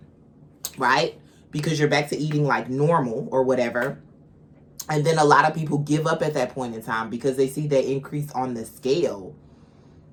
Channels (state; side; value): identical; both; correlation 1.00